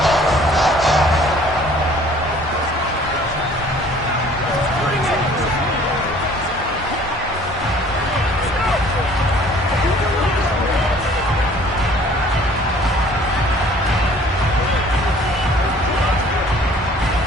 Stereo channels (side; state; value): both; normal; correlation 0.53